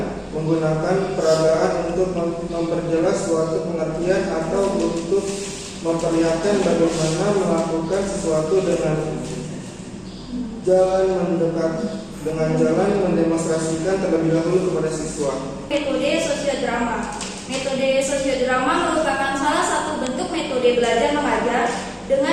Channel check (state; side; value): identical; both; correlation 1.00